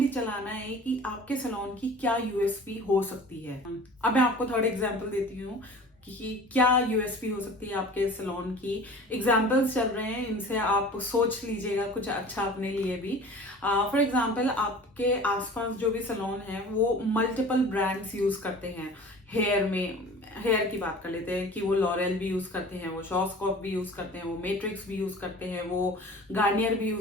चलाना है कि आपके सैलून की क्या यूएसपी हो सकती है। अब मैं आपको थर्ड एग्जाम्पल देती हूँ कि क्या यूएसपी हो सकती है आपके सैलून की। एग्जाम्पल्स चल रहे हैं, इनसे आप सोच लीजिएगा कुछ अच्छा अपने लिए भी। फॉर एग्जाम्पल आपके आसपास जो भी सैलून है वो मल्टीपल ब्रांड्स यूज करते हैं। हेयर में हेयर की बात कर लेते हैं कि वो लॉरेल भी यूज करते हैं, वो शॉर्ट्सकॉप भी यूज करते हैं, वो मैट्रिक्स भी यूज करते हैं, वो गार्नियर भी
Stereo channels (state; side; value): normal; both; correlation 0.42